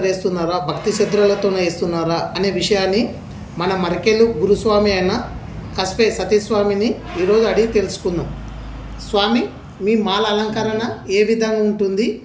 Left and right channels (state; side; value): identical; both; correlation 1.00